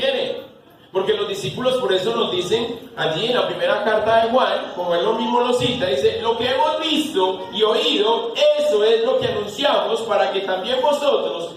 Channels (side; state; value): both; identical; correlation 1.00